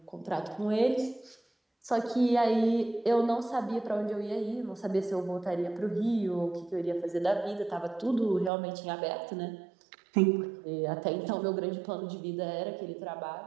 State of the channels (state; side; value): drops out; left; at 8.5 s